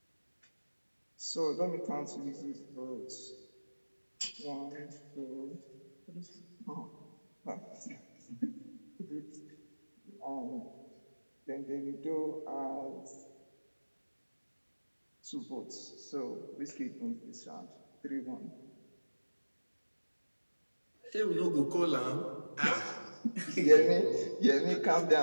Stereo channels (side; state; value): both; inverted; correlation -1.00